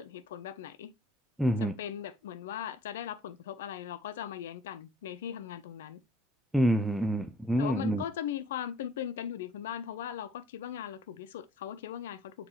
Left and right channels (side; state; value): both; normal; correlation 0.57